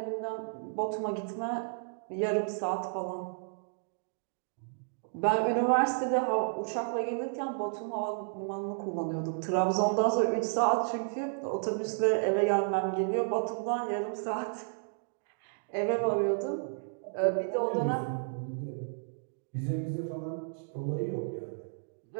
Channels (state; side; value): silent; left; digital silence